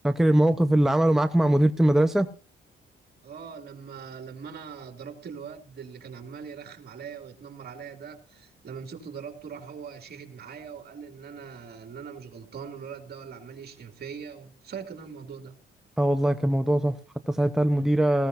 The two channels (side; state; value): both; normal; correlation 0.96